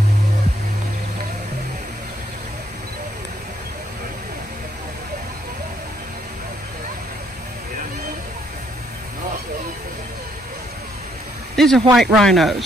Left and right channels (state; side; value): normal; both; correlation 0.71